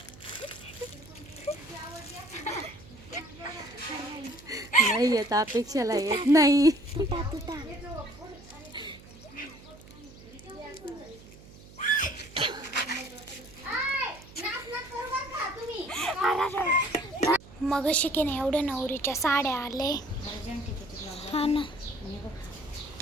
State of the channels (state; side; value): noise; right; hum, 20 dB below the sound